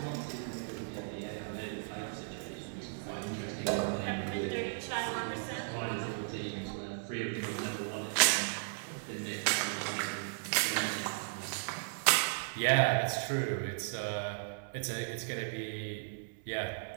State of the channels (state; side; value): silent; left; 54 dB below the other